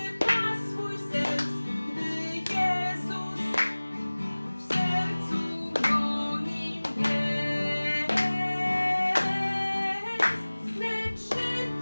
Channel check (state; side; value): inverted; both; correlation -1.00